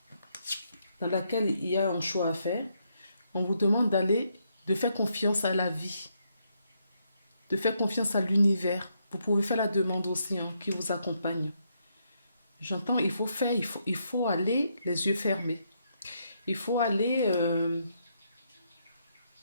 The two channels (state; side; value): inverted; both; correlation -0.77